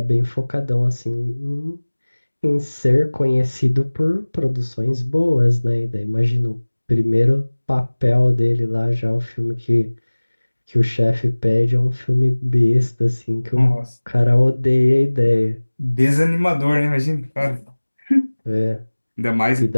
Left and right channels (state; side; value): inverted; both; correlation -1.00